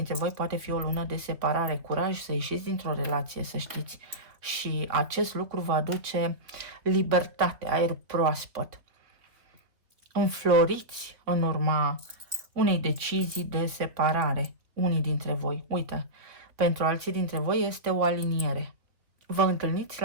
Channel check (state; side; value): late; left; 3.2 ms